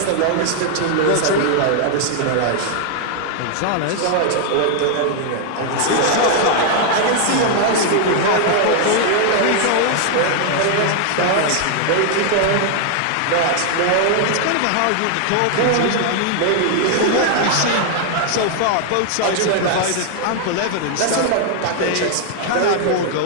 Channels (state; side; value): different; both; correlation 0.00